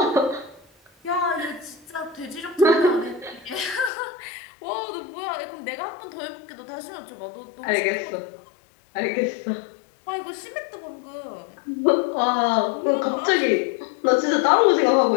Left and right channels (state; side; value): drops out; right; at 3.9 s